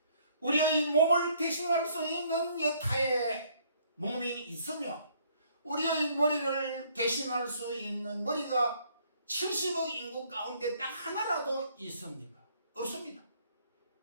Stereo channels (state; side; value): inverted; both; correlation -0.64